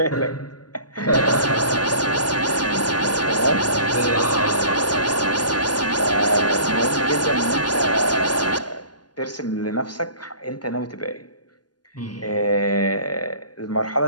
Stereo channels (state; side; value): late; right; 0.70 ms